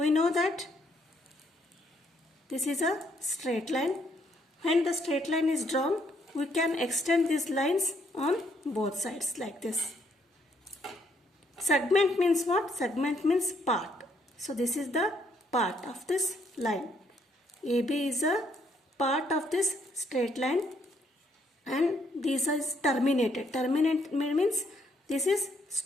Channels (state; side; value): normal; both; correlation 0.71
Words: know that this is a straight line. When the straight line is drawn, we can extend these lines on both sides like this. Segment means what? Segment means part. So this is the part of this line. AB is a part of this straight line and this is terminated. Terminate means This is